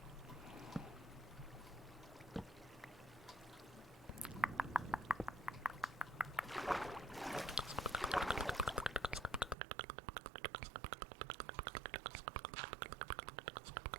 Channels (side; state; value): left; drops out; at 9.6 s